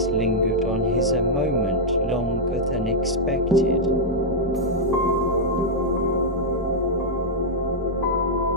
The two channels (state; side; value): normal; both; correlation -0.06